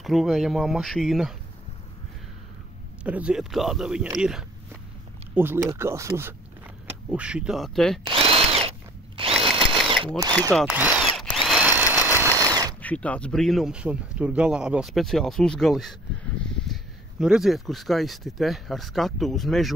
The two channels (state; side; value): normal; both; correlation 0.52